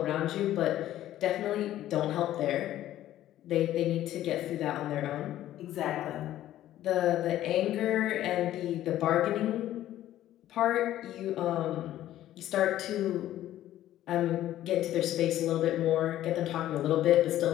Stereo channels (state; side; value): quieter; right; 13.2 dB